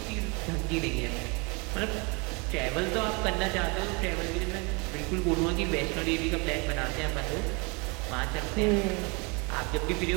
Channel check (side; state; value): left; quieter; 30.2 dB